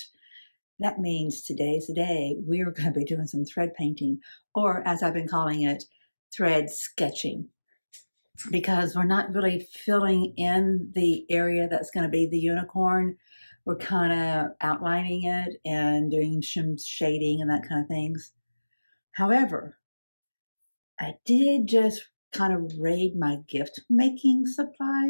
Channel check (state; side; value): inverted; both; correlation -1.00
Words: That means today's the day we're going to be doing some thread painting, or as I've been calling it, thread sketching, because we're not really filling in the area that's going to be the unicorn. We're kind of outlining it and doing some shading and that kind of things. However, I did just kind of raid my gift making